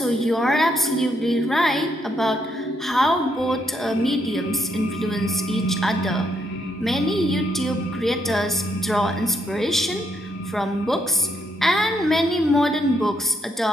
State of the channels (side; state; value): both; normal; correlation 0.76